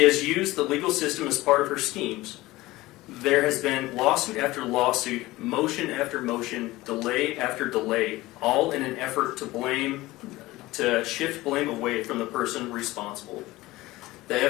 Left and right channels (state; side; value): quieter; right; 18.8 dB